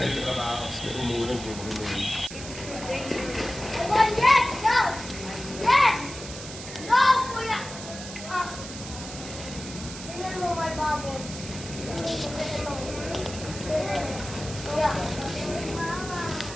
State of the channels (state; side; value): noise; right; hiss, 11 dB below the sound